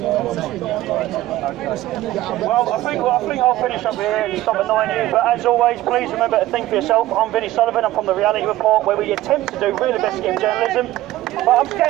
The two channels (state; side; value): quieter; left; 15.7 dB